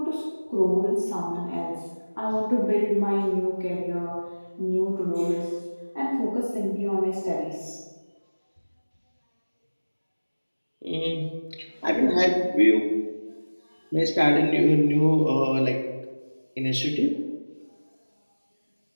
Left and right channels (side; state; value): both; inverted; correlation -1.00